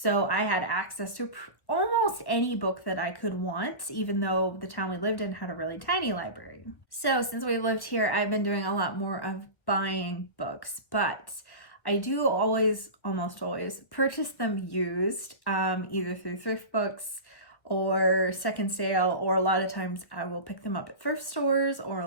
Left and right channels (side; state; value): right; late; 1.5 ms